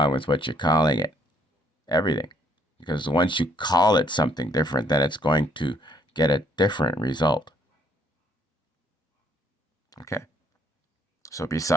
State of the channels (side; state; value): both; normal; correlation 0.66